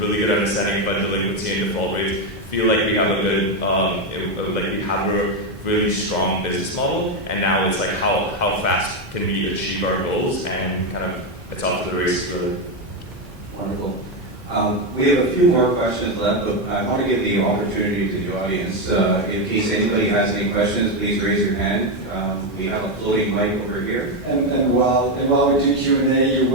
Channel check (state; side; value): normal; both; correlation 0.08